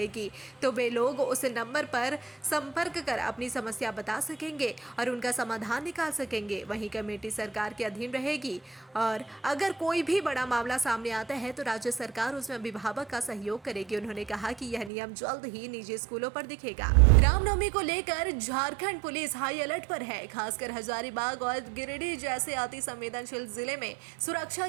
तो वे लोग उस नंबर पर संपर्क कर अपनी समस्या बता सकेंगे और उनका समाधान निकाल सकेंगे। वहीं कमेटी सरकार के अधीन रहेगी और अगर कोई भी बड़ा मामला सामने आता है तो राज्य सरकार उसमें अभिभावक का सहयोग करेगी। उन्होंने कहा कि यह नियम जल्द ही निजी स्कूलों पर दिखेगा। रामनवमी को लेकर झारखंड पुलिस हाई अलर्ट पर है। खासकर हजारीबाग और गिरिडीह जैसे अति संवेदनशील जिले में सुरक्षा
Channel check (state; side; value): drops out; left; at 14.9 s